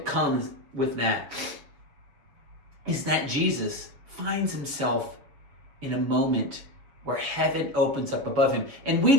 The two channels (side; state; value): left; late; 7.0 ms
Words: comes with that is that Jesus finds himself in a moment where heaven opens up above him. And we